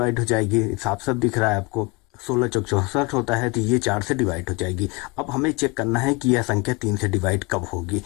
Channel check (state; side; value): quieter; right; 26.6 dB